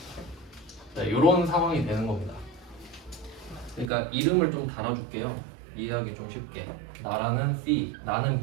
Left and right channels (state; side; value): drops out; left; at 3.9 s